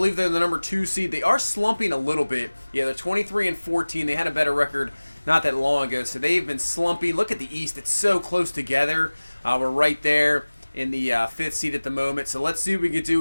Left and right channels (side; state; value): both; inverted; correlation -1.00